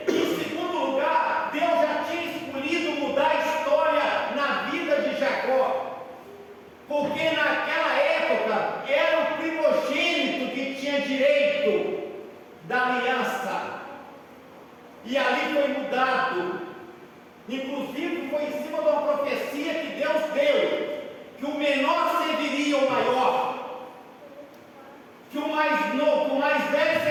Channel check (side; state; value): both; identical; correlation 1.00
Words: em segundo lugar, Deus já tinha escolhido mudar a história na vida de Jacó, porque naquela época era o primogênito que tinha direito da aliança, e ali foi mudado. Inclusive foi em cima de uma profecia que Deus deu, que o menor serviria o maior, que o mais novo, o mais velho